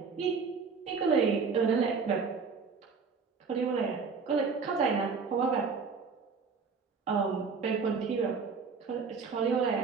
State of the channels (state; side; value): quieter; left; 5.2 dB